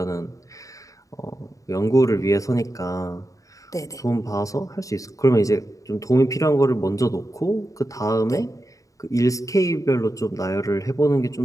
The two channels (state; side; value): late; right; 0.16 ms